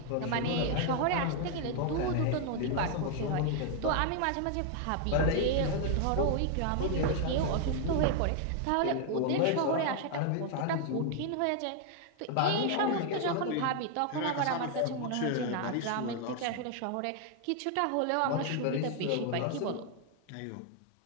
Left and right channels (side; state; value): both; different; correlation 0.00